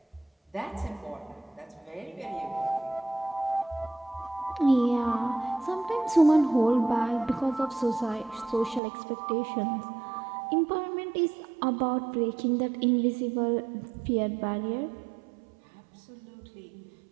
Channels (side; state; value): left; drops out; at 8.8 s